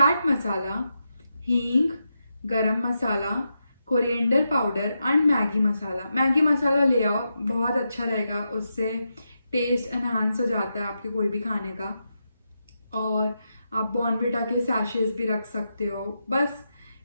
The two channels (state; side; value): inverted; both; correlation -0.86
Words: मसाला, हींग, garam masala, coriander powder and Maggi masala. Maggi masala ले आओ, बहुत अच्छा रहेगा, उससे टेस्ट एनहांस हो जाता है आपके कोई भी खाने का। और आप बॉर्नविटा के सैशेस भी रख सकते हो। बस